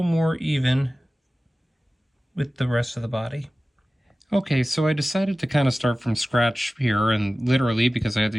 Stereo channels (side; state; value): both; normal; correlation 0.96